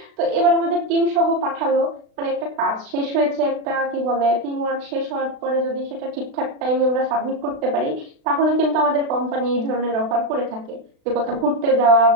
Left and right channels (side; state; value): left; late; 36 ms